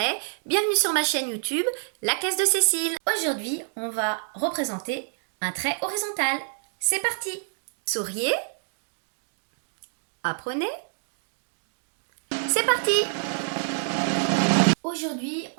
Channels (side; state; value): left; silent; digital silence